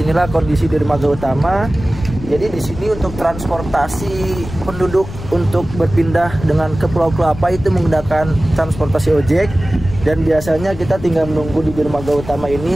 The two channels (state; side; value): noise; left; rumble, 12 dB below the sound